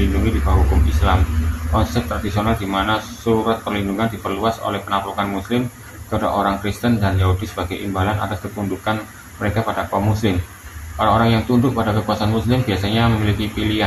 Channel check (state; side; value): identical; both; correlation 1.00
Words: di bawah hukum Islam. Konsep tradisional di mana surat perlindungan diperluas oleh penaklukan Muslim kepada orang Kristen dan Yahudi sebagai imbalan atas ketundukan mereka pada kaum Muslim. Orang-orang yang tunduk pada kekuasaan Muslim biasanya memiliki